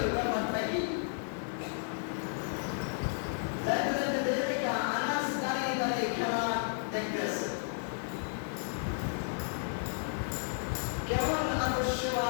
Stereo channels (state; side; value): silent; right; digital silence